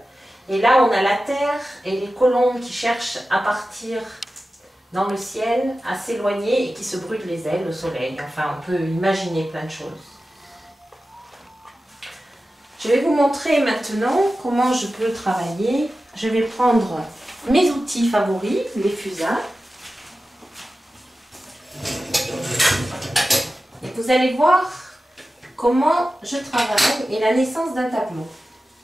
Et là, on a la terre et les colombes qui cherchent à partir dans le ciel, à s'éloigner et qui se brûlent les ailes au soleil. Enfin, on peut imaginer plein de choses. Je vais vous montrer maintenant comment je peux travailler. Je vais prendre mes outils favoris, les fusains. Et vous allez voir comment je travaille et la naissance d'un tableau.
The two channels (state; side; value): normal; both; correlation 0.94